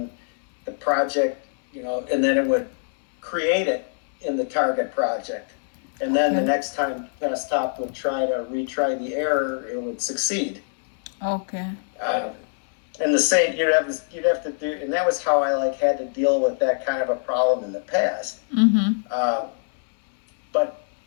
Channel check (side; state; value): right; silent; 63 dB below the other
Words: the project, and then it would create it in the target project. And then the next time desktop would try to retry the error, it would succeed. Okay. And the same, you'd have to do, and that was how I had to deal with that kind of a problem in the past. But